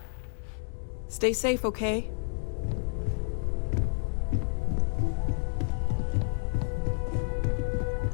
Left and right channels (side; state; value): right; silent; 58 dB below the other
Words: Stay safe, okay?